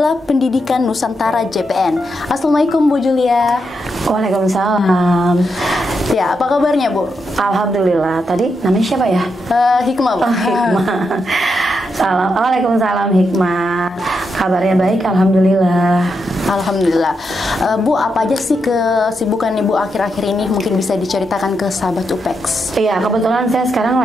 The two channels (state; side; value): normal; both; correlation 0.83